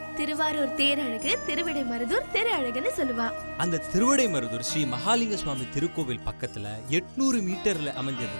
திருவாரூர் தேரழகு திருவிடைமருதூர் திரு அழகுன்னு சொல்லுவா. அந்த திருவிடைமருதூர் ஸ்ரீ மகாலிங்க சுவாமி திருக்கோவில் பக்கத்துல 800 மீட்டர்ல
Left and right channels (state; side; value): inverted; both; correlation -1.00